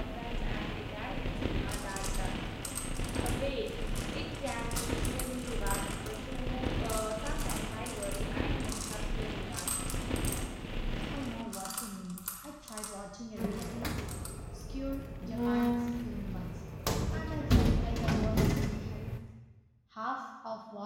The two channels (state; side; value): identical; both; correlation 1.00